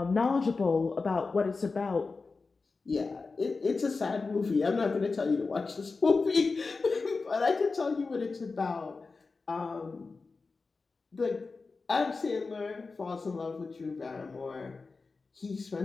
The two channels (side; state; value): right; quieter; 4.1 dB